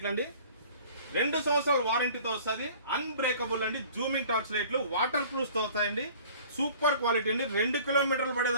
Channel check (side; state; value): both; inverted; correlation -0.48